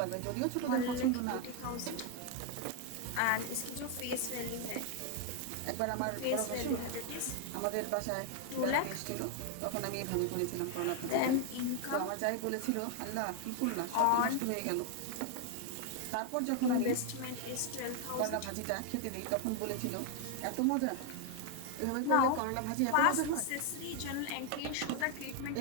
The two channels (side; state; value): both; different; correlation 0.00